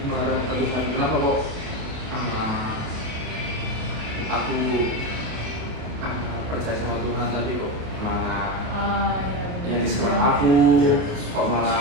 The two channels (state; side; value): late; left; 28 ms